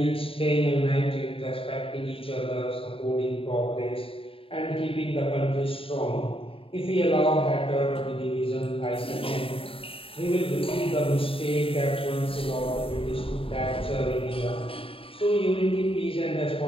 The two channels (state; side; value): late; right; 0.27 ms